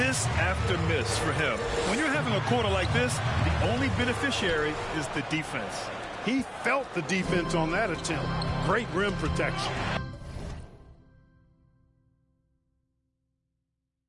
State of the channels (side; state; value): both; identical; correlation 1.00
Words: after miss for him. When you're having a quarter like this, the only beneficiary is the defense. He felt the defense on that attempt. Great rim protection.